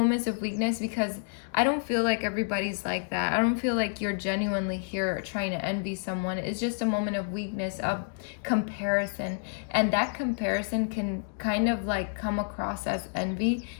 of weakness because I don't feel like everybody's like that. I don't feel like you're genuinely here trying to envy someone. It's just a moment of weakness, of comparison. And that comparison can kind of like come across as envy,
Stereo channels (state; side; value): silent; right; digital silence